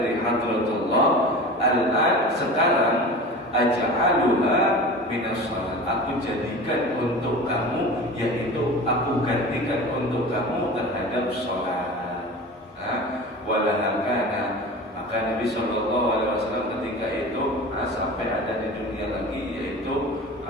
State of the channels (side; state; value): both; normal; correlation 0.34